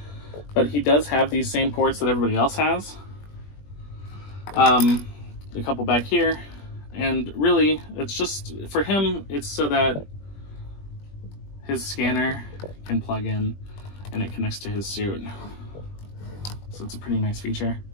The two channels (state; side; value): late; right; 20 ms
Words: but he does have these same ports that everybody else has. A couple back here, and really it's just for him, it's so that his scanner can plug in and it connects to his suit. So it's a pretty nice feature.